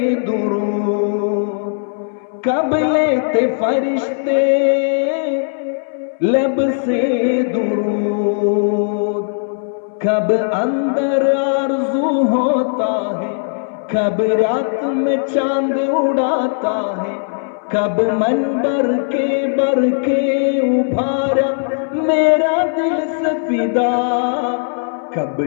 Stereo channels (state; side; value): silent; right; 62 dB below the other